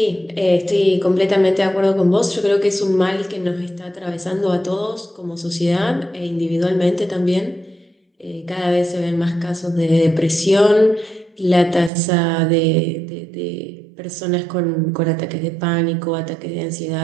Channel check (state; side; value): drops out; left; at 11.9 s